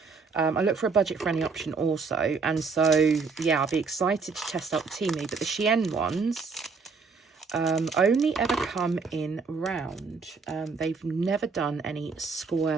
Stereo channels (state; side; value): quieter; left; 4.8 dB